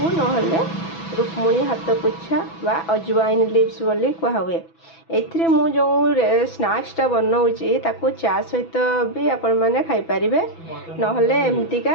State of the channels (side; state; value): right; late; 6.0 ms